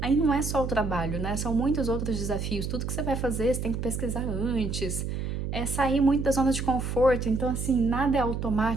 aí não é só o trabalho, né? São muitos outros desafios, tudo que você vai fazer, você tem que pesquisar antes, sair muito da zona de conforto, então assim, nada é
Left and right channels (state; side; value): noise; right; hum, 3 dB below the sound